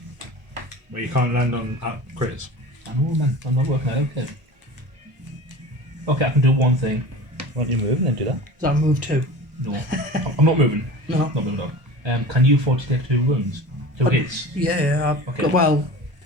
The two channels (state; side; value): late; left; 1.1 ms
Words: Well, you can't land on crits. I know, man. I'm not working out. Okay. Okay, I can do one thing. Why don't you move and then do that? Does that move 2? No, I'm not moving. No. Not moving on. Can you afford to take 2 wounds? 2 hits? Yeah. Okay. Well,